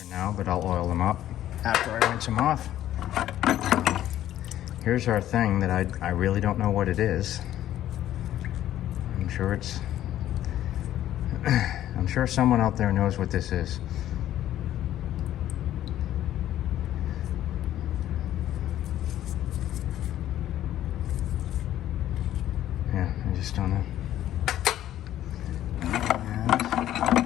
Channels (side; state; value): right; quieter; 12.5 dB